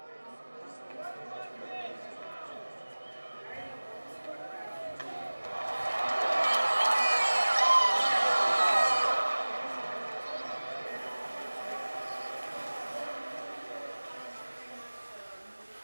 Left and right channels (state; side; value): inverted; both; correlation -1.00